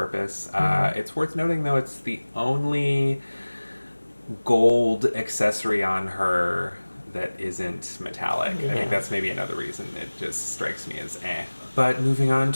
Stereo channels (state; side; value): inverted; both; correlation -1.00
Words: It's worth noting though, it's the only gold accessory on her that isn't metallic. I think that's maybe another reason it just strikes me as But moving on